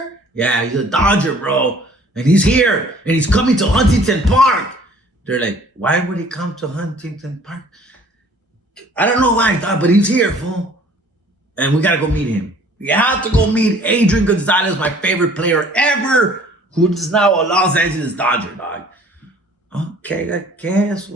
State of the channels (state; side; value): normal; both; correlation 0.53